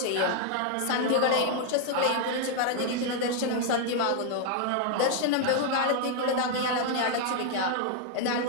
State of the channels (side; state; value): both; different; correlation 0.00